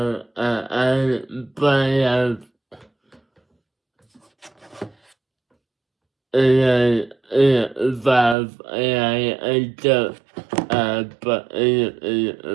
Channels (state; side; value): drops out; left; at 8.3 s